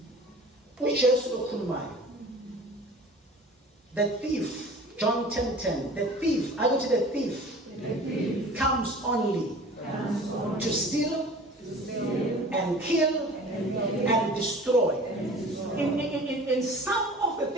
uJesu okhulumayo. The thief, John 10:10. The thief, I go to the thief. Comes only to steal and kill and destroy. In some of the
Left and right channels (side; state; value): both; normal; correlation 0.43